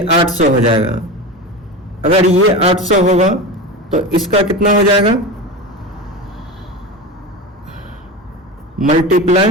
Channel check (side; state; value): both; normal; correlation 0.25